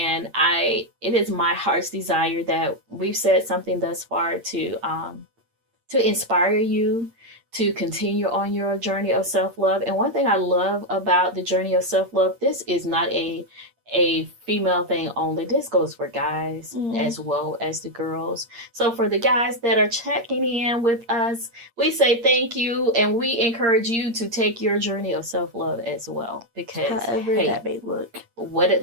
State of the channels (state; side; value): late; left; 8.6 ms